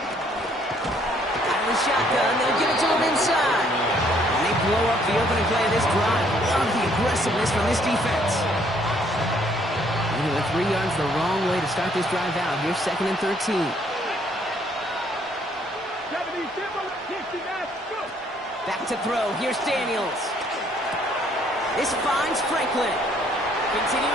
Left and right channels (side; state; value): both; normal; correlation 0.65